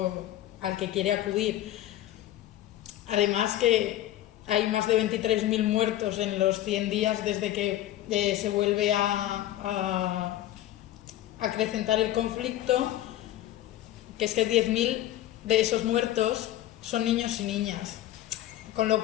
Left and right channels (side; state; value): right; quieter; 13.8 dB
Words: al que quiere acudir. Además, que hay más de 23.000 muertos en los 100 días desde que se vuelve a acrecentar el conflicto, que es que 10.000 de esos muertos son niños y niñas, con lo